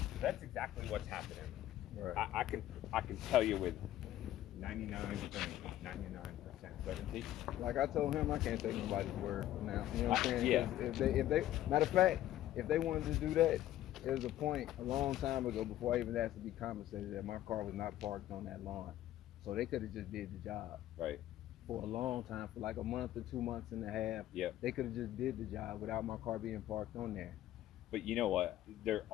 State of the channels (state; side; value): quieter; right; 13.4 dB